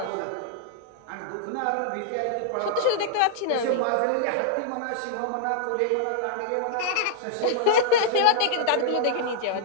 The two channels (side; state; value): both; different; correlation -0.01